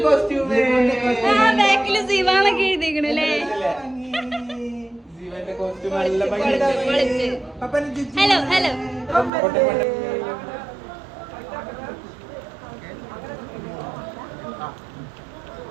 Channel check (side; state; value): left; drops out; at 9.3 s